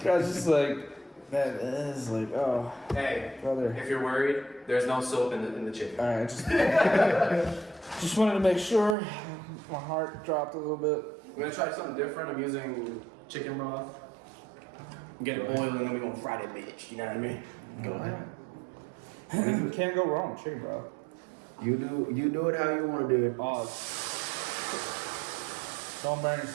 was just like, that is like, oh, Hey, brother. if you're worried, there's no soap in the chicken. All right, just wanted to make sure. My heart dropped a little bit. We're gonna try something different. I'm using chicken broth. Get it boiled and then we're gonna fry that bitch. You know what I mean? Go ahead. Can't go wrong with chicken, bro. You do it how you want to do it. Oh, don't burn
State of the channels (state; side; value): drops out; left; at 9.0 s